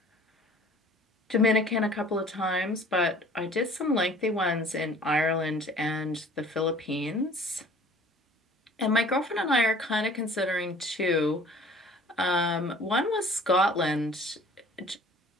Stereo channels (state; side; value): normal; both; correlation 0.49